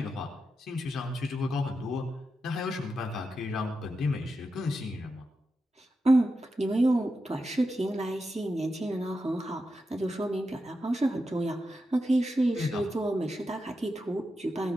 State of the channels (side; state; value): both; normal; correlation 0.88